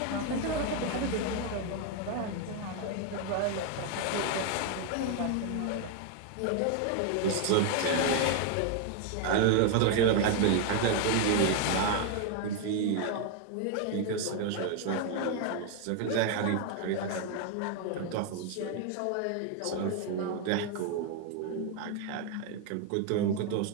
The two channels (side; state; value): both; different; correlation 0.01